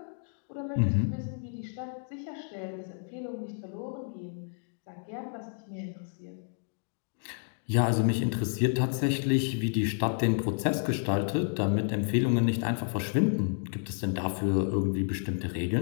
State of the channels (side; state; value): right; silent; 57 dB below the other